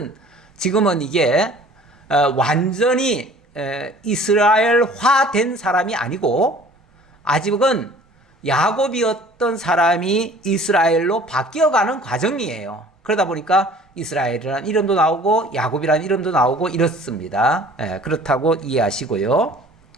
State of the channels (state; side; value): normal; both; correlation 0.50